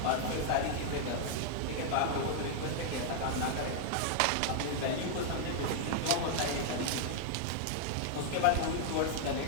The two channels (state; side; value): different; both; correlation 0.00